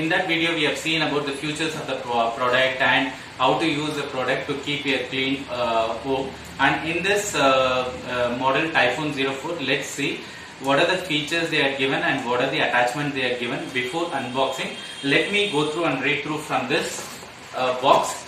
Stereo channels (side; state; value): both; identical; correlation 1.00